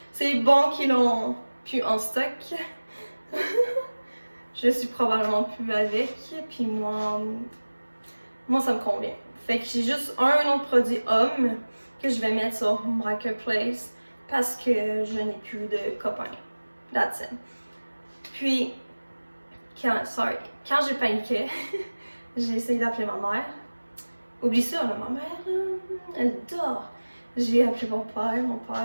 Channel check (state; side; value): inverted; both; correlation -1.00